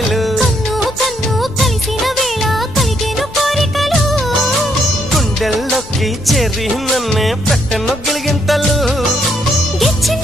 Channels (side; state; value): left; noise; rumble, 18 dB below the sound